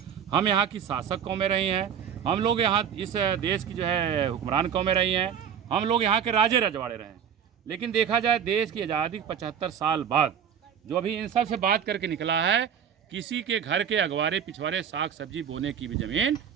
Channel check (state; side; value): quieter; left; 8.2 dB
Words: हम यहाँ की शासक कौमें रही हैं, हम लोग यहाँ इस देश की जो है हुक्मरान कौमें रही हैं, हम लोग यहाँ के राजे रजवाड़े रहे हैं। लेकिन देखा जाए देश की आज़ादी के 75 साल बाद जो अभी इन सब से बात करके निकला है, किसी के घर के अगवारे पिछवाड़े साग सब्जी बोने की भी ज़मीन